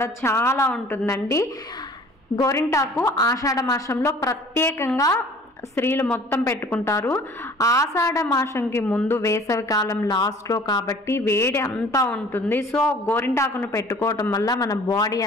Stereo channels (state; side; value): normal; both; correlation 0.49